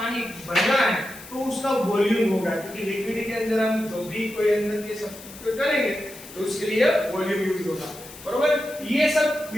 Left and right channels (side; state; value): left; noise; hiss, 17 dB below the sound